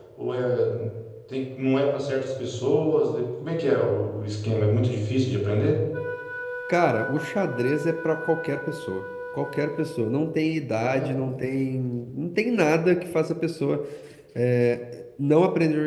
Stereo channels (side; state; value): both; identical; correlation 1.00